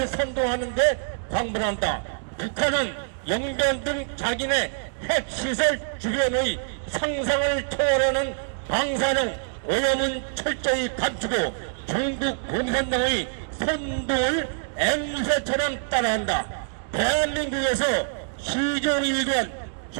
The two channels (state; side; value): silent; left; digital silence